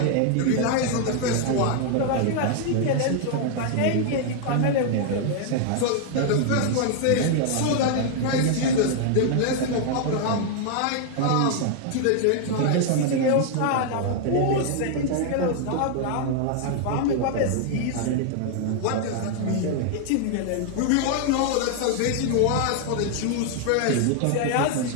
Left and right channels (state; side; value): different; both; correlation 0.00